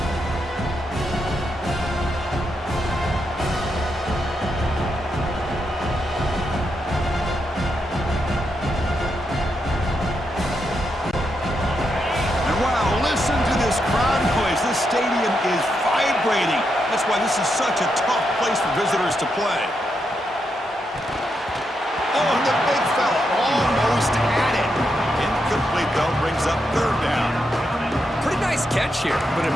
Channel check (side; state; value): both; normal; correlation 0.83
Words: Listen to this crowd noise. This stadium is vibrating. That's why this is such a tough place for visitors to play. Oh, and the big fella almost had it. Incomplete, though, brings up third down. Pretty nice catch here, but a